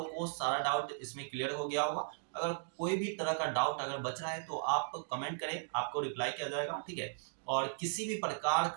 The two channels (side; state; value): left; silent; digital silence